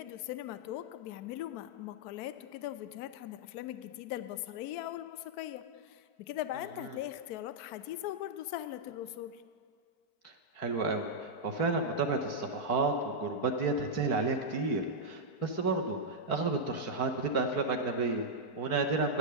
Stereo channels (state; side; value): late; right; 4.6 ms